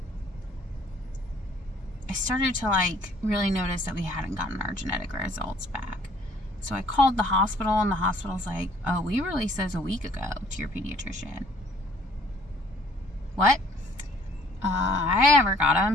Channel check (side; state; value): both; normal; correlation 0.58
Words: I started to like really notice that we hadn't gotten our genetic results back. So I called the hospital, and the hospital's like, oh, we released those a week ago to your pediatrician. What? I never got